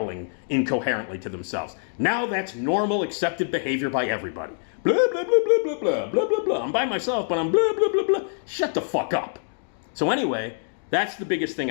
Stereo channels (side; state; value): right; silent; digital silence